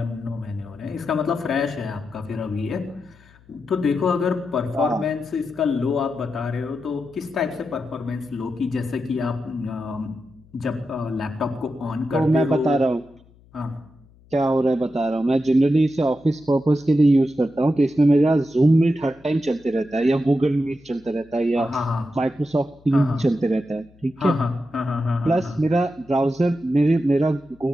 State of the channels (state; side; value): noise; left; hum, 28 dB below the sound